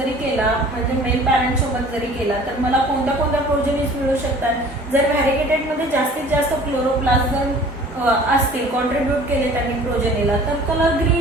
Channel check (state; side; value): normal; both; correlation 0.48